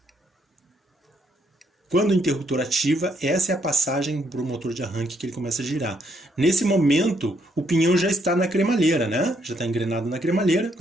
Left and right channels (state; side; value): normal; both; correlation 0.73